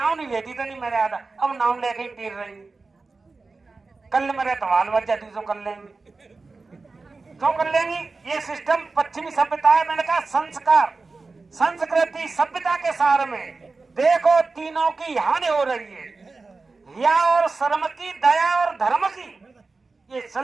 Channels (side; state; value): left; quieter; 3.9 dB